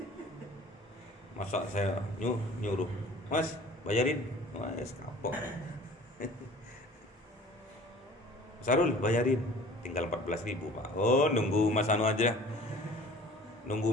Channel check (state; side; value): normal; both; correlation 0.47